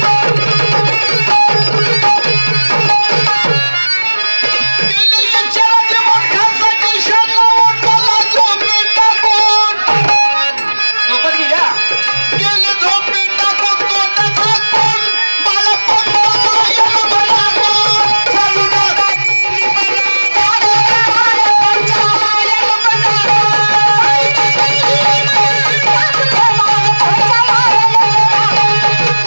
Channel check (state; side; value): inverted; both; correlation -1.00